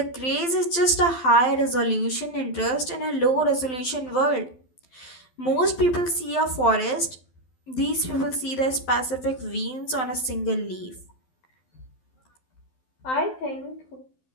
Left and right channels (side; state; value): right; late; 12 ms